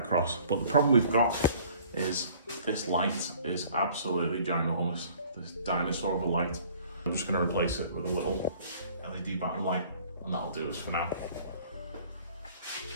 But the problem we've got is this light is absolutely ginormous. This dinosaur of a light. I'm just going to replace it with a little LED backlight light, and that'll do us for now.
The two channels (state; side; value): inverted; both; correlation -0.53